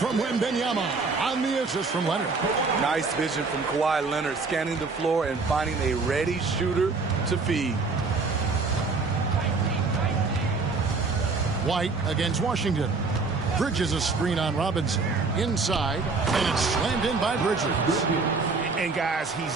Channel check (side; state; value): left; quieter; 4.2 dB